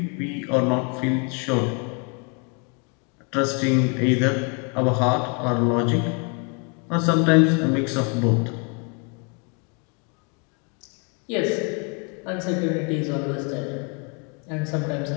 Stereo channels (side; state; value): right; quieter; 35.8 dB